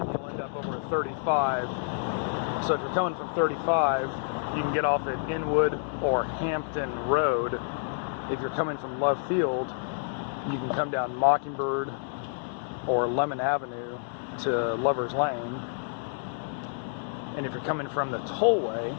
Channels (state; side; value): silent; right; digital silence